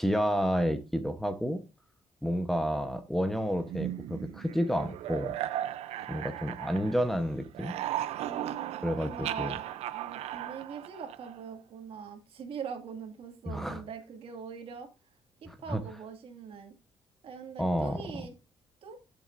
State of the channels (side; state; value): both; normal; correlation 0.78